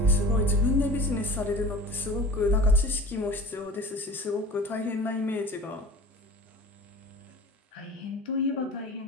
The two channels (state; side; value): normal; both; correlation 0.39